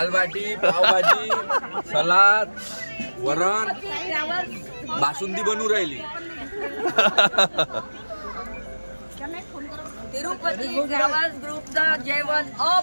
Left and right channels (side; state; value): both; inverted; correlation -1.00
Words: बाटी, पावभाजी, सलाद, वरण, बासुंदी बनवून राहिली. तिरुपती ट्रॅव्हल्स ग्रुपचं जेवण